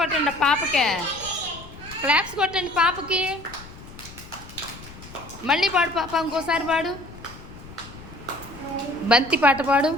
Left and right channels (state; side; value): noise; left; rumble, 17 dB below the sound